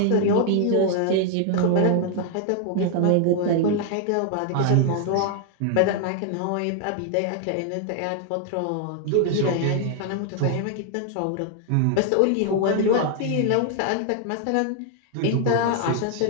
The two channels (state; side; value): different; both; correlation 0.00